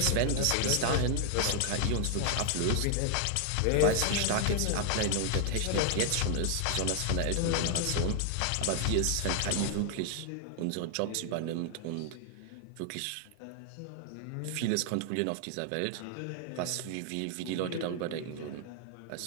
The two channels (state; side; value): different; both; correlation 0.00